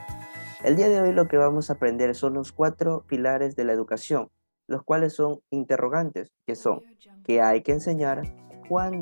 El día de hoy lo que vamos a aprender son los 4 pilares de la educación, los cuales son interrogantes, que son ¿qué hay que enseñar?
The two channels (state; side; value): inverted; both; correlation -1.00